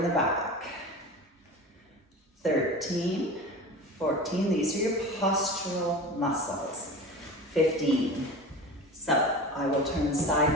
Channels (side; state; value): both; normal; correlation 0.33